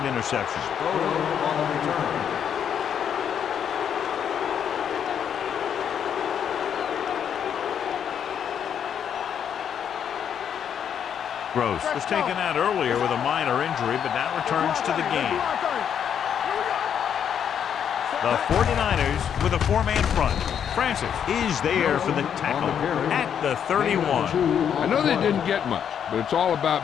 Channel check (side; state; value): right; quieter; 8.5 dB